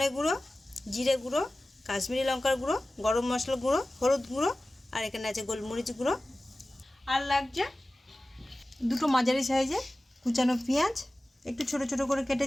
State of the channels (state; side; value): normal; both; correlation 0.96